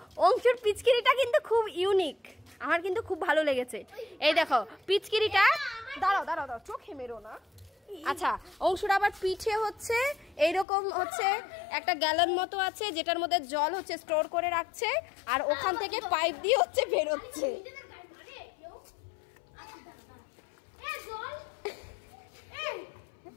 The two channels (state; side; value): drops out; right; at 10.7 s